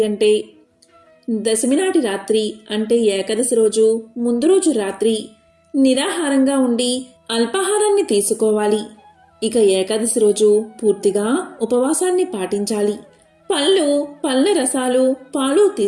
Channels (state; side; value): identical; both; correlation 1.00